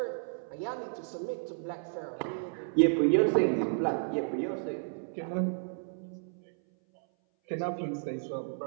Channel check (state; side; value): silent; left; 56 dB below the other